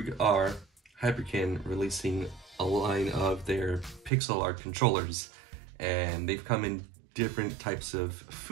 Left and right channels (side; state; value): left; drops out; at 4.1 s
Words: are, Hyperkin releasing a line of their pixel art controllers, and they've come in different types of